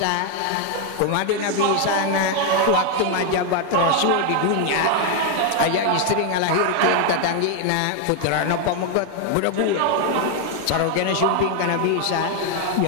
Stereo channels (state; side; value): different; both; correlation 0.01